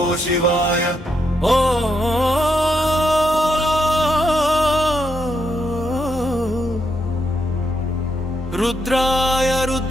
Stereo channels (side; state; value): both; normal; correlation 0.79